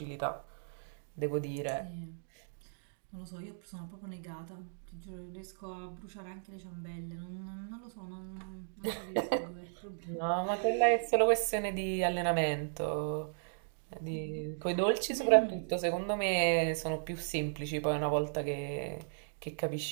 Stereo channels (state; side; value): silent; left; digital silence